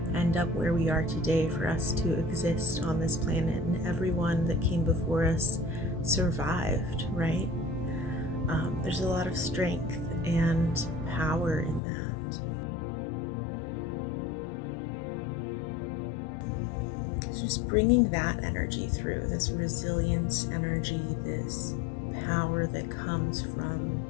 end up where we are today, for us to exist on this planet, and everyone that came before us survived, right? There's a lot of strength and power in that. So just bringing that energy through, this resilience energy, this power that comes from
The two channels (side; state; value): right; drops out; at 11.8 s